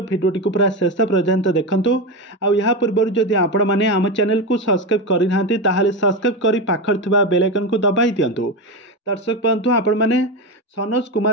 भिडियोटी को पूरा शेष पर्यंत देखूँ। आ पूर्व जदि आपण मैंने आम चैनल को सब्सक्राइब करना ताहले सब्सक्राइब कर पाखर थिबा बेल आइकन को दबाई दिंतु। दर्शक बंधु आपण मैंने सनोज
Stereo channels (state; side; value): normal; both; correlation 0.16